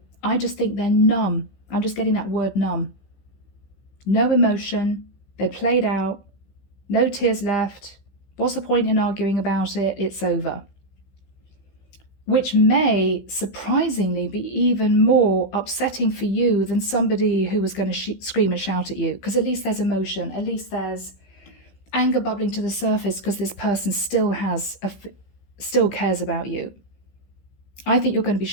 I just think they're numb. I'm just getting that word numb. No emotion. They played out. No tears left. What's the point in arguing about it? It's over. Which may surprisingly be even more upsetting for you than somebody who was going to scream and shout at you, because at least there's emotion, at least there's anger bubbling to the surface because this person still cares about you. I think you're going to be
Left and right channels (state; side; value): late; right; 15 ms